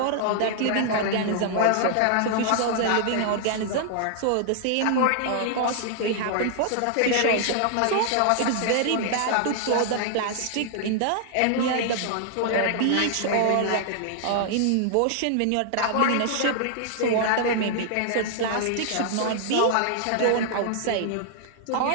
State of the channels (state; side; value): different; both; correlation -0.01